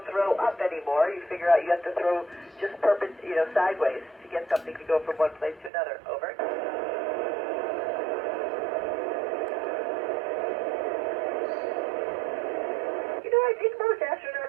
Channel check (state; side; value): drops out; left; at 5.7 s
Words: throw up anymore. You figure out you have to throw just sideways to get something to go from one place to another. Over. I think most